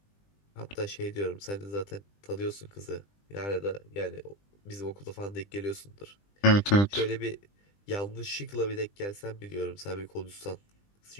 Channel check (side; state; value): right; late; 20 ms